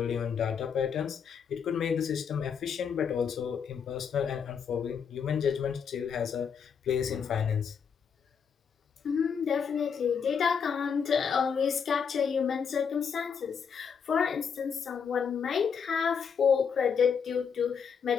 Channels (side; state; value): right; quieter; 6.7 dB